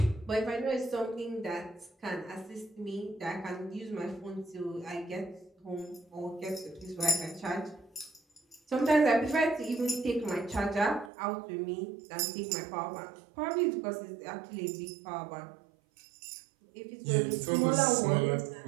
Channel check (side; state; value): left; drops out; at 11.1 s